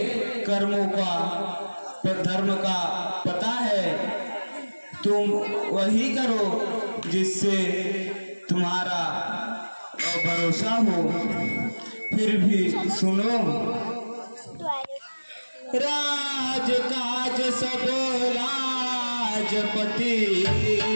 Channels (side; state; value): both; inverted; correlation -1.00